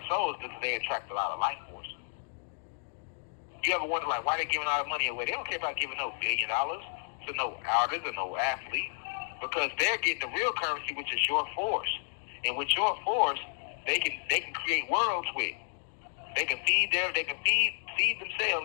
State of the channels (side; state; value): right; silent; digital silence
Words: souls because they attract a lot of life force. You ever wonder, like, why they giving all the money away? They don't care about giving no $1 billion to no artist or no athlete because they're getting the real currency, which is your force. And with your force, they can create worlds with. They can feed